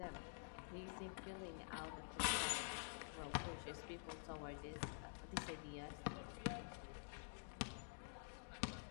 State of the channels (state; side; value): silent; right; digital silence